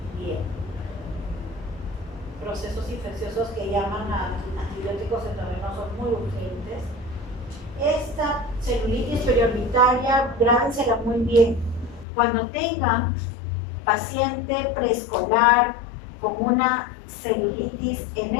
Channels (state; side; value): drops out; right; at 12.1 s